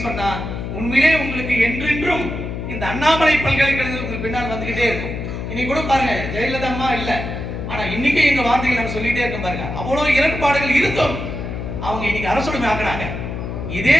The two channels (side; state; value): left; noise; hum, 6 dB below the sound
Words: சொன்னா உண்மையிலே உங்களுக்கு என்றென்றும் இந்த அண்ணாமலை பல்கலைக்கழகத்துக்கு பின்னால் வந்துகிட்டே இருக்கும். இன்னைக்கு கூட பாருங்க, ஜெயலலிதா அம்மா இல்ல, ஆனா இன்னைக்கு எங்க வார்த்தைகள் நம்ம சொல்லிட்டே இருக்கோம் பாருங்க. அவ்வளவு இரண்டுபாடுகள் இருந்தும் அவங்க இன்னைக்கு அரசுடைமை ஆக்குறாங்க. இதே